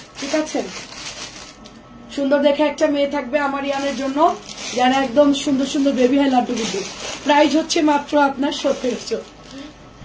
ঠিক আছে, সুন্দর দেখে একটা মেয়ে থাকবে আমার ইয়ানের জন্য, যারা একদম সুন্দর সুন্দর বেবি হয়, লাড্ডু গুড্ডু। প্রাইস হচ্ছে মাত্র আপনার 1700।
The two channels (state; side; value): identical; both; correlation 1.00